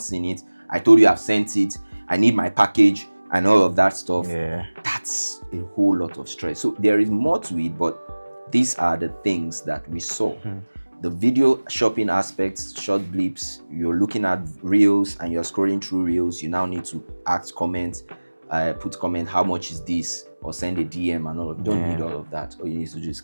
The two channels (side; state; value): both; inverted; correlation -1.00